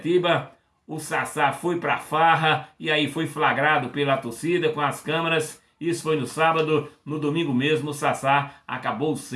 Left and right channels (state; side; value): identical; both; correlation 1.00